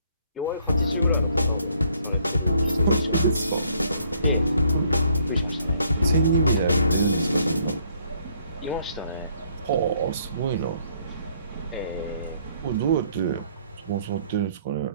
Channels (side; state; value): both; inverted; correlation -0.66